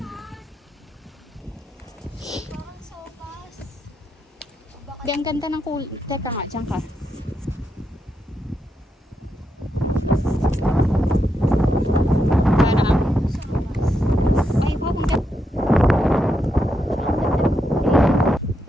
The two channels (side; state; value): both; normal; correlation 0.82